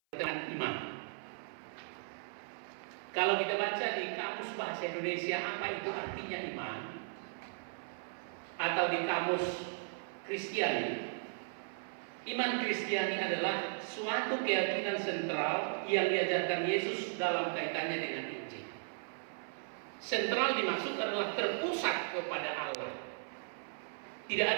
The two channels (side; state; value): left; silent; 53 dB below the other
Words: iman. Kalau kita baca di kamus bahasa Indonesia apa itu artinya iman, atau di kamus Kristiani, iman Kristiani adalah suatu keyakinan sentral yang diajarkan Yesus dalam kaitannya dengan Injil. Sentral dimaksud adalah terpusat kepada Allah. Tidak